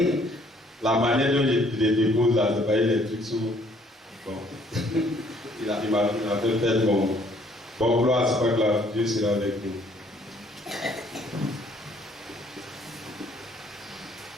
La manière dont je les dépose là, c'est pas les trucs sous. Bon. il m'a fait faire bon gloire, c'est pas grave, Dieu sera avec nous.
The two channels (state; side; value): normal; both; correlation 0.63